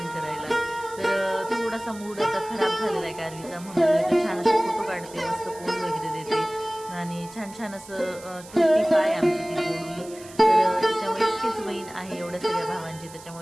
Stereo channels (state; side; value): noise; right; hiss, 19 dB below the sound